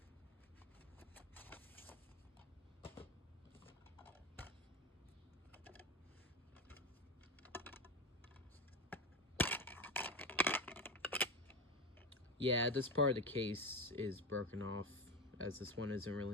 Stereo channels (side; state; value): both; normal; correlation 0.19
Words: Yeah, this part of the case is broken off, as this one isn't